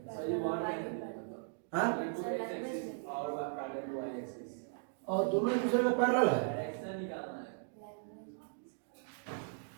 आंसर और दोनों दूसरे में पैरेलल है।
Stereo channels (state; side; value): silent; left; digital silence